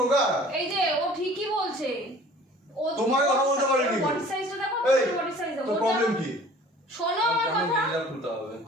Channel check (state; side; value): normal; both; correlation 0.48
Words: এই যে ও ঠিকই বলছে। ও তোমার কথা বলতে পারিনি। বডি সাইজটা দেখো, এই বডি সাইজ দেখো। তোর প্রবলেম কি? শোনো আমার কথা। এটা খুলতে হবে।